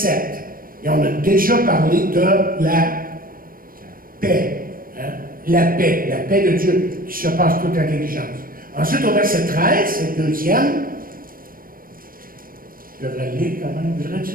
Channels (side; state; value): left; late; 0.41 ms